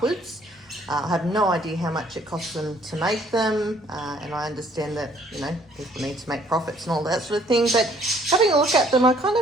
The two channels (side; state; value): both; normal; correlation 0.62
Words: I have no idea how much it costs them to make them, and I understand that, you know, people need to make profits and all that sort of thing, but having a look at them, I kind